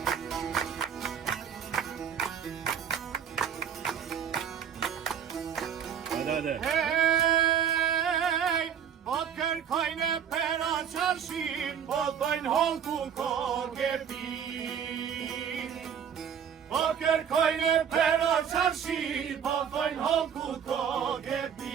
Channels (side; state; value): left; quieter; 8.1 dB